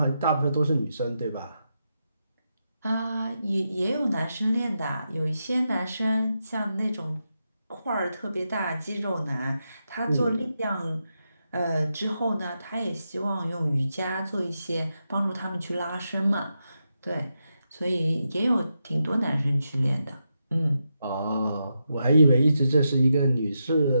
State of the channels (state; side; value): inverted; both; correlation -0.86